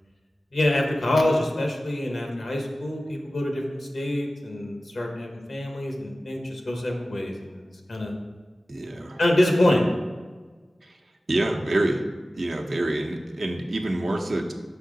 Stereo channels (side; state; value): both; normal; correlation 0.96